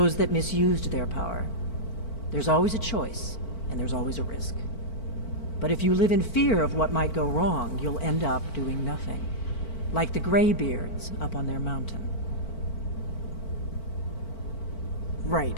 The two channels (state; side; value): late; right; 4.5 ms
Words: that misused their power. There's always a choice, and there's always a risk. But if you live in fear of what might go wrong, you'll end up doing nothing. Like the Greybeards up on their mountain.